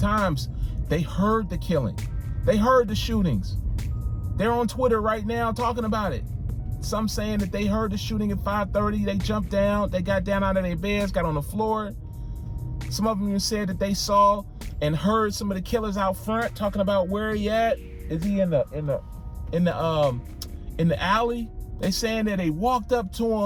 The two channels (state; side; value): identical; both; correlation 1.00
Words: They heard the killing. They heard the shootings. They're on Twitter right now talking about it. Some saying that they heard the shooting at 5:30. They jumped down. They got down out of their beds, got on the floor. Some of them even said that they saw and heard some of the killers out front talking about where he at. Is he in the alley? They saying that they walked up to